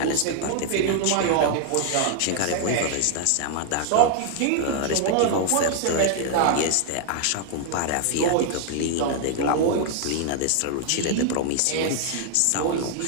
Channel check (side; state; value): both; different; correlation 0.00